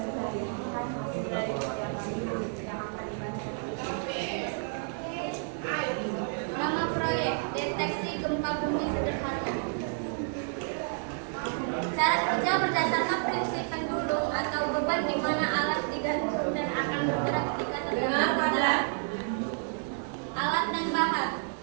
Nama proyek deteksi gempa bumi sederhana. Cara kerja berdasarkan prinsip pendulum atau beban di mana alat digantung dan akan bergerak ketika terkena beban. Alat dan bahan:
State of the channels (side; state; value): left; silent; 58 dB below the other